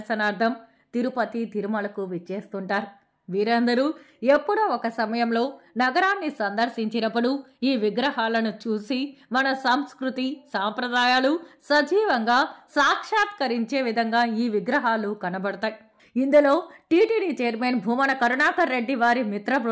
తిరుపతి, తిరుమలకు విచ్చేస్తుంటారు. వీరందరూ ఎప్పుడో ఒక సమయంలో నగరాన్ని సందర్శించినప్పుడు ఈ విగ్రహాలను చూసి మన సంస్కృతి, సాంప్రదాయాలు సజీవంగా సాక్షాత్కరించే విధంగా ఈ విగ్రహాలు కనబడతాయి. ఇందులో టీటీడీ చైర్మన్ భూమన కరుణాకర్ రెడ్డి వారి మిత్ర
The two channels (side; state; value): both; identical; correlation 1.00